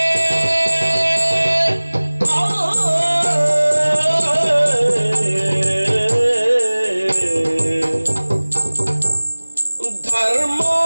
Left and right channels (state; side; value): inverted; both; correlation -1.00